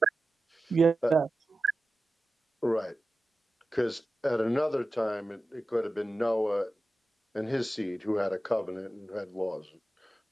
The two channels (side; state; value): both; normal; correlation 0.94